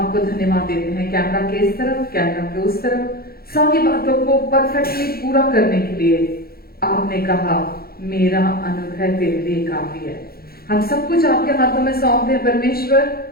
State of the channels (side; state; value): right; late; 0.44 ms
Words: धन्यवाद देते हैं कैमरा के इस तरफ, कैमरा के उस तरफ, सारी बातों को परफेक्टली पूरा करने के लिए आपने कहा मेरा अनुग्रह तेरे लिए काफी है। हम सब कुछ आपके हाथों में सौंप दें परमेश्वर,